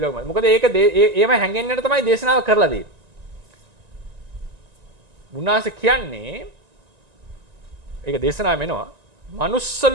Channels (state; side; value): late; left; 1.9 ms